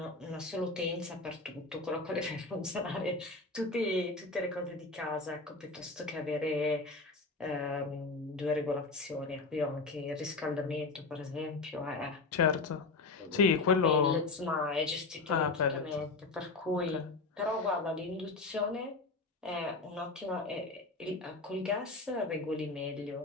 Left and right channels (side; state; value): right; quieter; 3.6 dB